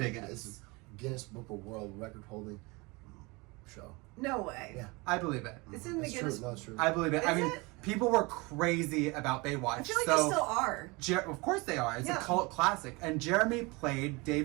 This is Guinness Book of World Record holding show. No way. Yeah. I believe it. It's in the It's Guinness. true. No, it's true. I believe it. Is I mean, it? people were crazy about Baywatch. I feel like they still are. Of course they are. It's Yeah. a cult classic. And Jeremy played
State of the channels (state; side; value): quieter; left; 25.8 dB